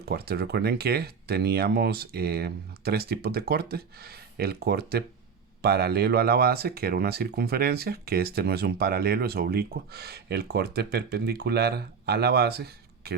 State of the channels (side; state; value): left; quieter; 6.0 dB